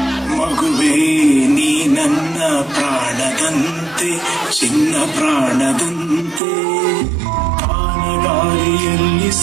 ಚಿನ್ನ ಪ್ರಾಣದಂತೆ ಆನಗಾಲಿಯಲ್ಲಿ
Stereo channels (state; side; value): drops out; left; at 6.4 s